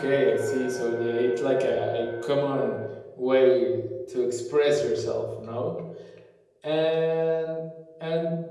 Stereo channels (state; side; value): identical; both; correlation 1.00